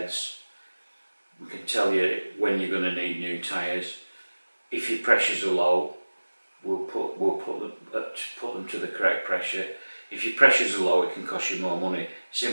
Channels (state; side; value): inverted; both; correlation -1.00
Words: We can tell you when you're going to need new tyres. If your pressures are low, we'll put them to the correct pressure. If your pressures are low, it can cost you more money,